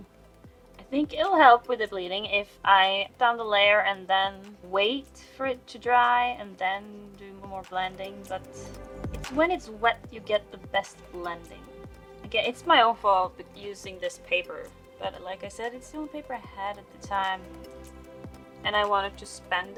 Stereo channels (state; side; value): identical; both; correlation 1.00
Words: I think it'll help with the bleeding if I put down the layer and then wait for it to dry and then do more blending, but it's when it's wet you get the best blending. Again, it's my own fault using this paper, but like I said, it's the only paper I had at the time, and I wanted to spend